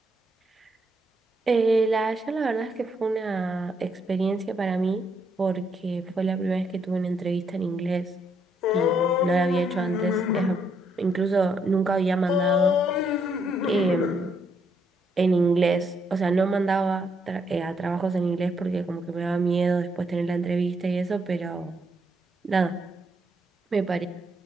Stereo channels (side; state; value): both; normal; correlation 0.75